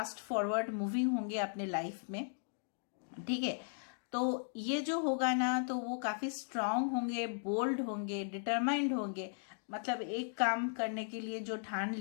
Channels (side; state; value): right; silent; digital silence